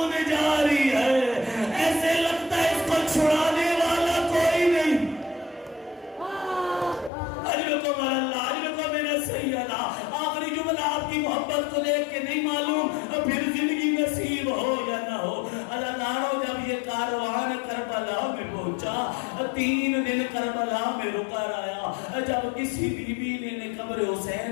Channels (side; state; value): right; drops out; at 7.1 s